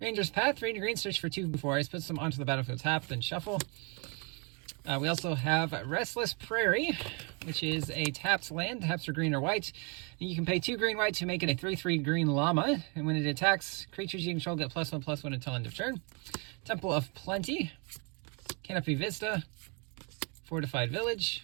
Ranger's Path, 3 and a green, search for 2 4s, puts them onto the battlefield tapped, then shuffle. We also have Restless Prairie, which is a tapped land, taps for green or white. And you can pay 2 green white to make it a 3/3 green llama, and when it attacks, creatures you control get +1/+1 until end of turn. Temple of Plenty, Canopy Vista, Fortified Village,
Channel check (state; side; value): quieter; left; 33.2 dB